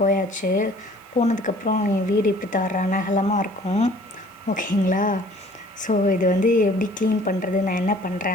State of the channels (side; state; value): right; noise; hiss, 30 dB below the sound